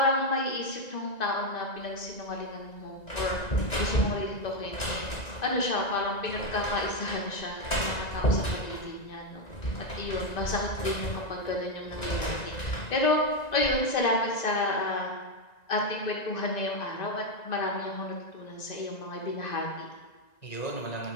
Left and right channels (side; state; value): right; late; 1.9 ms